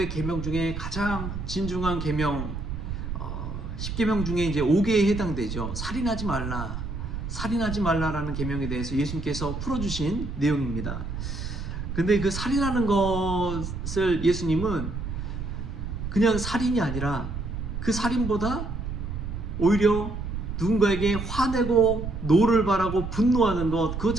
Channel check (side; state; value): right; noise; rumble, 6 dB below the sound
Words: 계명 중에 가장 진중한 계명 10계명 중에 이제 5개에 해당되죠. 살인하지 말라라는 계명에 대해서 예수님께서 풀어주신 내용입니다. 근데 그 살인하는 것을 예수님은 그냥 살인이 아니라 그 살인보다 오히려 누군가에게 화내고 노를 바라고 분노하는 것, 그것